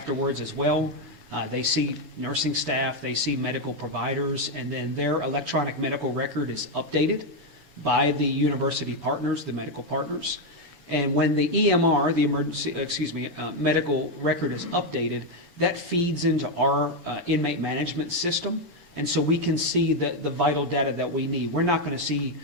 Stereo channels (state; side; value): late; right; 7.0 ms